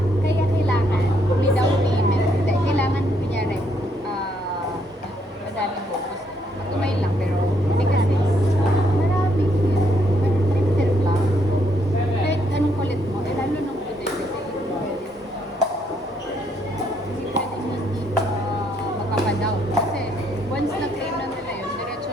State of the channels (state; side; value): normal; both; correlation 0.72